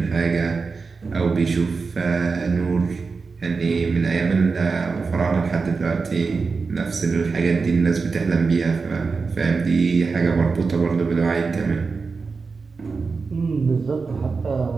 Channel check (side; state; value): left; quieter; 4.6 dB